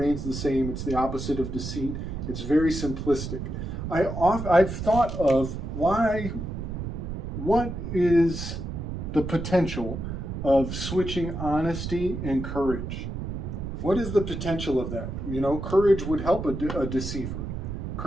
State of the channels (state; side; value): noise; right; rumble, 5 dB below the sound